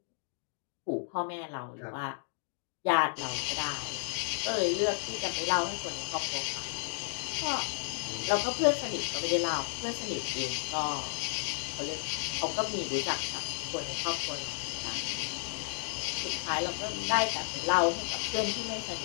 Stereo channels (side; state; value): right; silent; digital silence